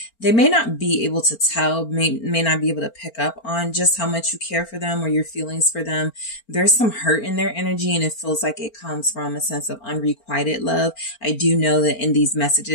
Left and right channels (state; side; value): late; right; 4.4 ms